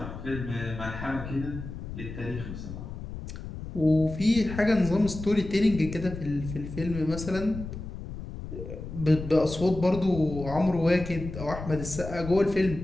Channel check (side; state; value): left; noise; rumble, 9 dB below the sound